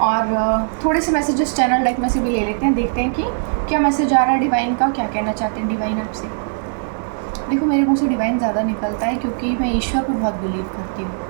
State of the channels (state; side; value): silent; left; digital silence